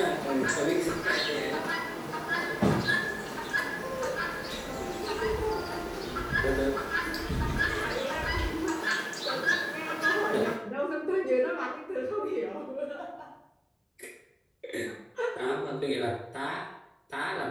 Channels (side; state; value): both; identical; correlation 1.00